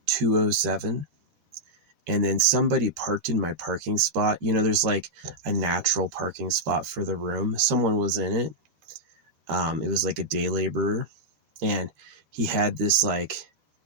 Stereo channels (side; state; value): left; late; 13 ms